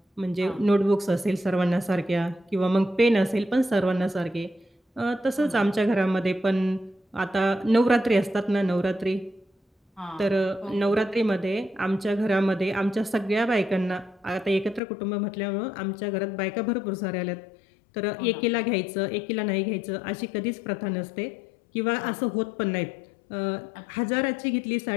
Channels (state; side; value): drops out; right; at 14.8 s